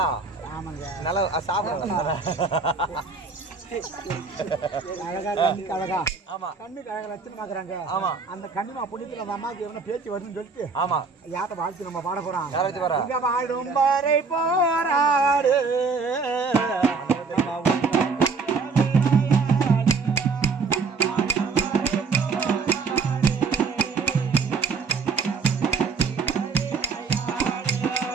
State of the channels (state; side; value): quieter; left; 4.8 dB